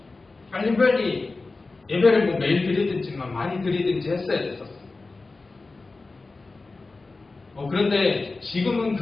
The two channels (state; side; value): quieter; right; 3.6 dB